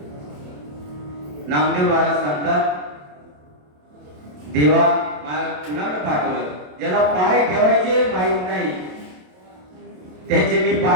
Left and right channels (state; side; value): late; left; 27 ms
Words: नामदेव महाराज सांगतात, देवा मला कुणाकडे पाठवलं, ज्याला पाय ठेवायचे माहित नाही त्याचे मी